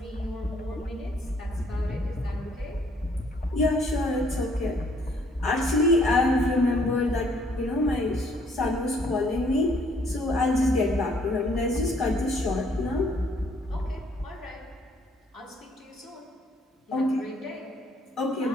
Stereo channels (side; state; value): both; normal; correlation 0.64